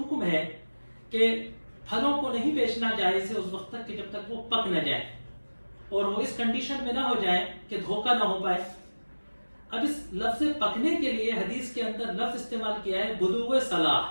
ہے کہ پھلوں کو نہیں بیچنا جائز ہے اس وقت تک کہ جب تک وہ پک نہ جائے، اور وہ اس کنڈیشن میں نہ ہو جائے کہ دھوکہ نہ ہو پائے۔ اب اس لفظ پکنے کے لیے حدیث کے اندر لفظ استعمال کیا ہے بدوء صلاح،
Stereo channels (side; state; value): both; inverted; correlation -1.00